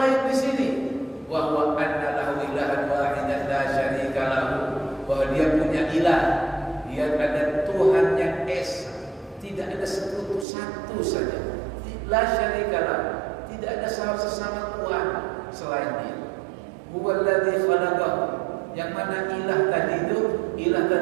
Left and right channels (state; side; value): drops out; left; at 10.5 s